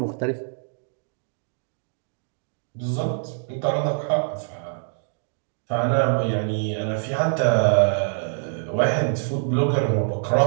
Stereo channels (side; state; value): left; silent; digital silence